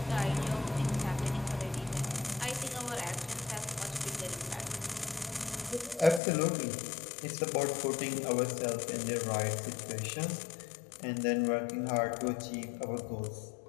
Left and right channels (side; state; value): right; drops out; at 6.2 s